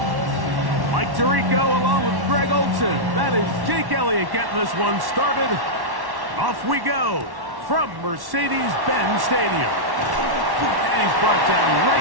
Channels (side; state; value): left; late; 1.1 ms